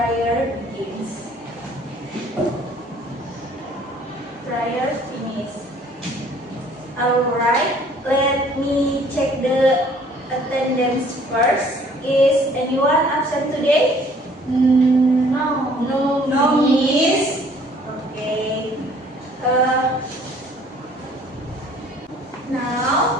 begins. Prior finish. Alright, let me check the attendance first. Is anyone absent today? No. No, miss. Okay.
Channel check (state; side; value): normal; both; correlation 0.57